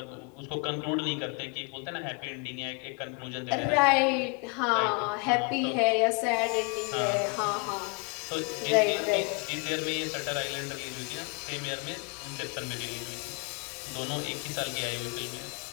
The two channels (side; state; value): right; quieter; 32.8 dB